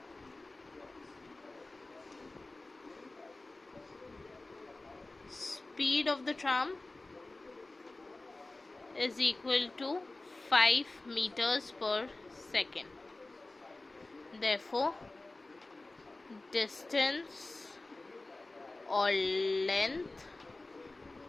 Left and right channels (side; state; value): right; quieter; 3.0 dB